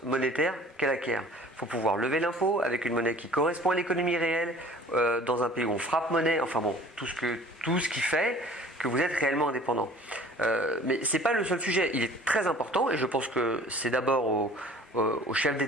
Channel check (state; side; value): normal; both; correlation 0.49